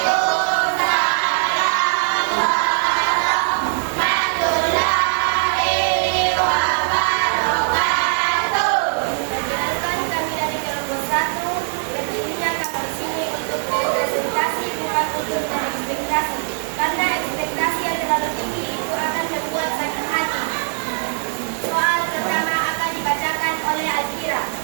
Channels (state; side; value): silent; left; digital silence